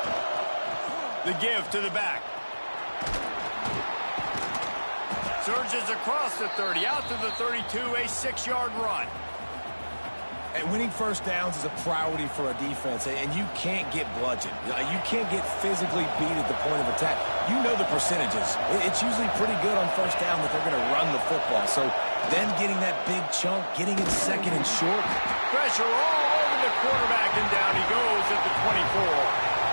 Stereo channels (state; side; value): inverted; both; correlation -1.00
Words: The give to the back. Surges across the 30, out to the 32, a 6-yard run. And winning first downs is a priority for a defense, and you can't get bludgeoned. You can't get physically beat at the point of attack. You know the percentages. It's usually pretty good on first down that they're going to run the football. So then getting that big chunk, getting it second and short. Pressure all over the quarterback, and down he goes at the 24.